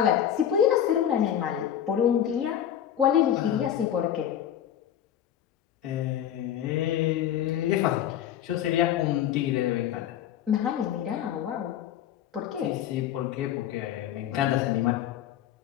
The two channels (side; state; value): right; quieter; 10.4 dB